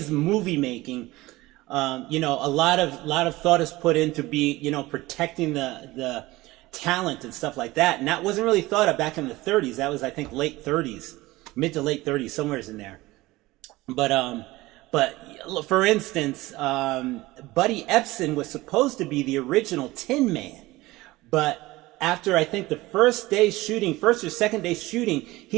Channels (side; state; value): left; quieter; 19.3 dB